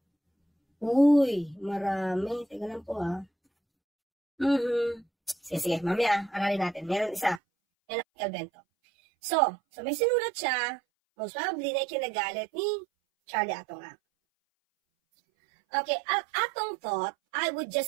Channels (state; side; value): drops out; left; at 7.4 s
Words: Uy, marami. Teka lang po ha. Sige. Mamaya, aralin natin. Meron isa. Yan ang Calvento. So may sinulat siya. Most probably na ikinagalit ni Charlie Atong. Okay, Atong thought, I would